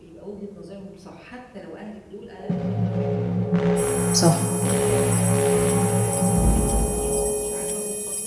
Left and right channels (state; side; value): identical; both; correlation 1.00